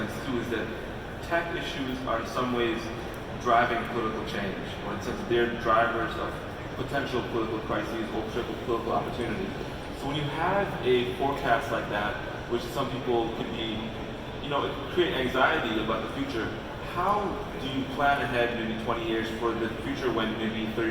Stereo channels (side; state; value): both; identical; correlation 1.00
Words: too is that tech issues are in some ways driving political change, or in the sense that they're drivers of potential political crises or potential political opportunity. So when you have a forecast like that, which some people could be, it could create anxiety about the future, how do you plan ahead maybe 20 years for the future when maybe